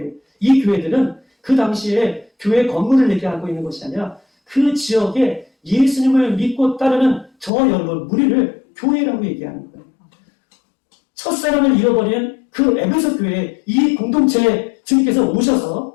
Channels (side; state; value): right; drops out; at 7.5 s